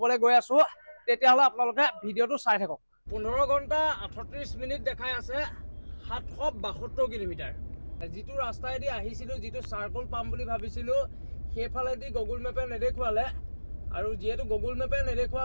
গৈ আছো তেতিয়াহ'লে আপোনালোকে ভিডিঅ'টো চাই থাকক 15 ঘণ্টা 38 মিনিট দেখাই আছে 772 কিলোমিটাৰ যিটো ৰাস্তাইদি আহিছিলো যিটো চাৰ্কল পাম বুলি ভাবিছিলো সেইফালেদি গুগল মেপে নেদেখুৱালে আৰু যেহেতু গুগল মেপে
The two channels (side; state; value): both; inverted; correlation -1.00